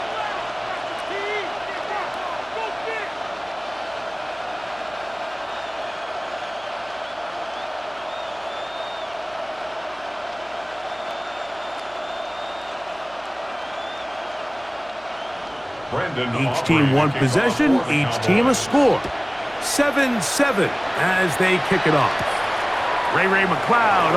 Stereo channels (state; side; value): noise; right; hum, 26 dB below the sound